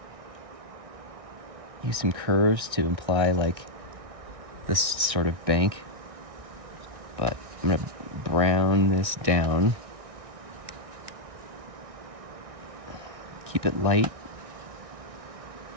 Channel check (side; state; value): left; late; 1.6 ms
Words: Use some curves to imply like this sort of bank. But I'm going to brown this down. Keep it light,